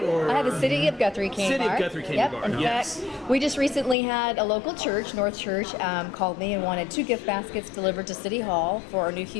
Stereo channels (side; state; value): right; drops out; at 4.0 s